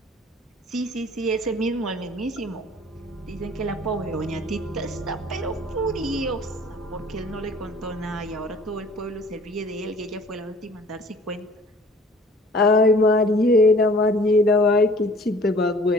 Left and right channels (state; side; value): normal; both; correlation 0.51